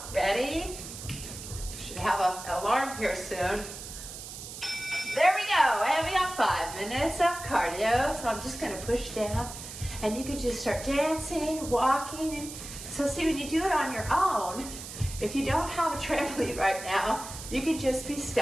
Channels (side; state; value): right; noise; hiss, 11 dB below the sound